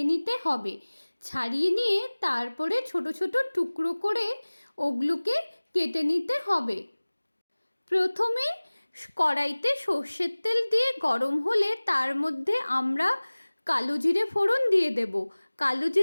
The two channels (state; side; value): inverted; both; correlation -1.00